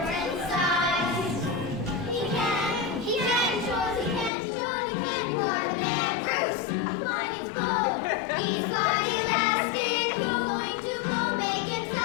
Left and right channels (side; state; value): right; drops out; at 4.3 s